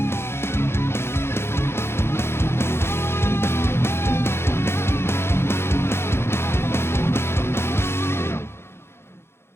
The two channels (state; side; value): late; right; 0.12 ms